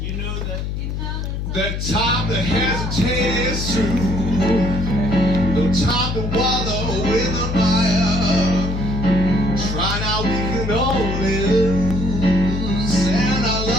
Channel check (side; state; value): left; noise; hum, 3 dB below the sound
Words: know that. The time to hesitate is through. No time to wallow in the mire. Try now, we can only lose. And our